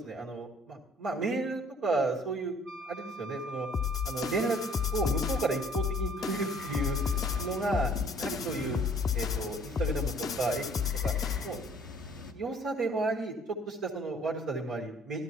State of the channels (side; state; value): both; normal; correlation 0.57